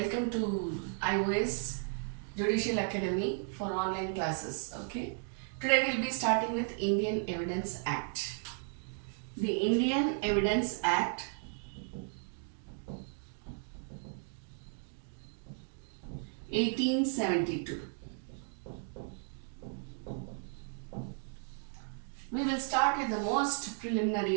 to iOS Judicial Academy for online classes. Okay, today we'll be starting with Indian Evidence Act. The Indian Evidence Act (1872). We will start with the most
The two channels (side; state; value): left; silent; 55 dB below the other